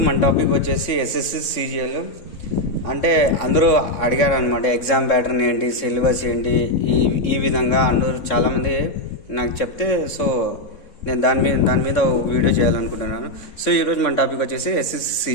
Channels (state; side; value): late; right; 3.6 ms